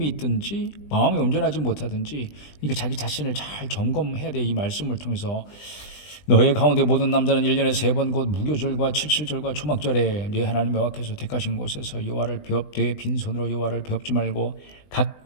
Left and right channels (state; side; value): late; right; 20 ms